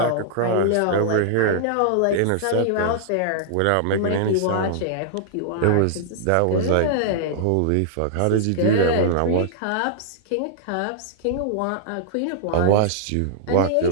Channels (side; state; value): both; different; correlation -0.01